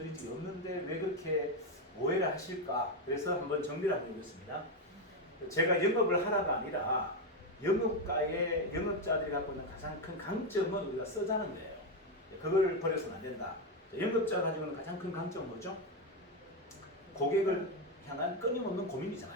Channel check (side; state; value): both; normal; correlation 0.08